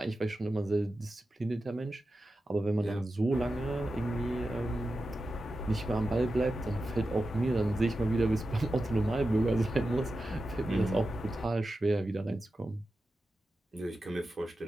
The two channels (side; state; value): both; normal; correlation 0.92